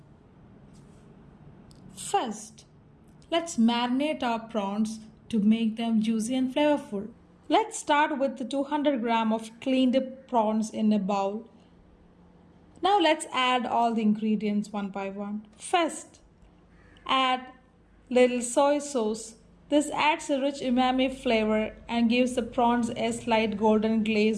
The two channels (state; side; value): identical; both; correlation 1.00